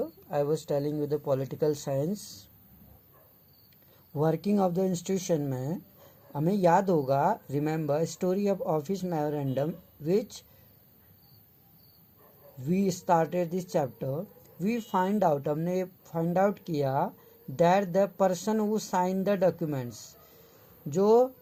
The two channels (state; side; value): identical; both; correlation 1.00